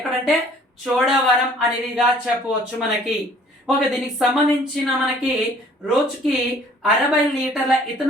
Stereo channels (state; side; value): normal; both; correlation 0.55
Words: చోడవరం అనేదిగా చెప్పవచ్చు మనకి. ఓకే దీనికి సంబంధించిన మనకి రోజుకి 60 లీటర్ల